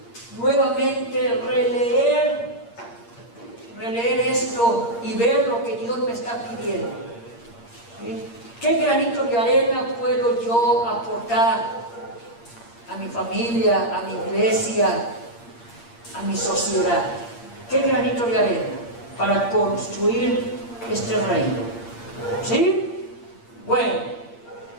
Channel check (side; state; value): right; late; 8.6 ms